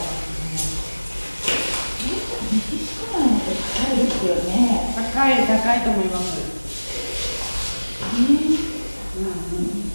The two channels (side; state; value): both; inverted; correlation -1.00